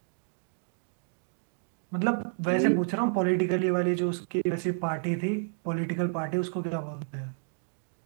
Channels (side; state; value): left; silent; digital silence